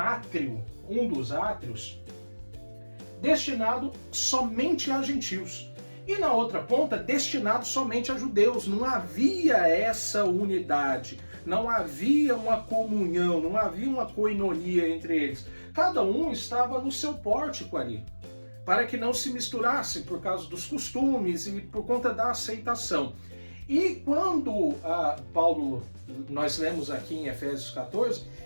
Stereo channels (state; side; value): inverted; both; correlation -1.00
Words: um dos átrios, destinado somente a gentios. E na outra ponta, destinado somente a judeus. Não havia essa unidade, não havia uma comunhão, não havia uma koinonia entre eles. Cada um estava no seu pórtico ali, para que não se misturassem por causa dos costumes e por conta da aceitação. E quando Paulo, nós lemos aqui em Efésios 14,